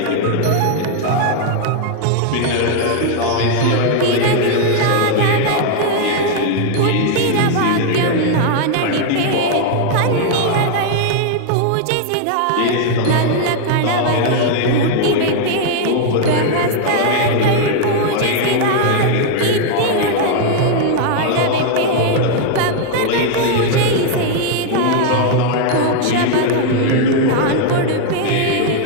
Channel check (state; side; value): different; both; correlation 0.00